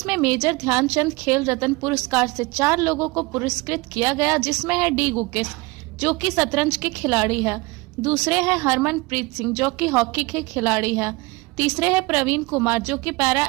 में मेजर ध्यानचंद खेल रत्न पुरस्कार से 4 लोगों को पुरस्कृत किया गया, जिसमें है डी गुकेश जो कि शतरंज के खिलाड़ी है, दूसरे है हरमनप्रीत सिंह जो कि हॉकी के खिलाड़ी है, तीसरे है प्रवीण कुमार जो कि पैरा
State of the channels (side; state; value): left; quieter; 24.2 dB